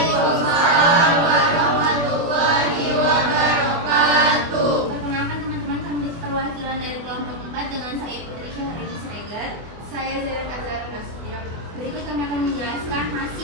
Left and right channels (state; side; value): late; left; 24 ms